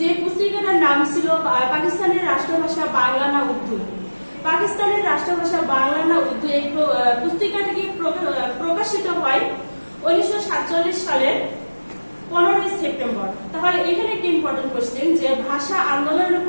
পুস্তিকাটার নাম ছিল পাকিস্তানের রাষ্ট্রভাষা বাংলা না উর্দু। পাকিস্তানের রাষ্ট্রভাষা বাংলা না উর্দু এই পুস্তিকাটি প্রকাশিত হয় 1947 সালের 15 সেপ্টেম্বর। তাহলে এখানে একটি ইম্পর্টেন্ট কোশ্চেন যে ভাষা আন্দোলনের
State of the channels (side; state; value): both; inverted; correlation -1.00